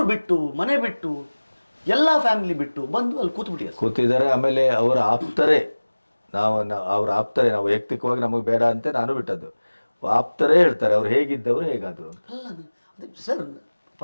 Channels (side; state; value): both; inverted; correlation -1.00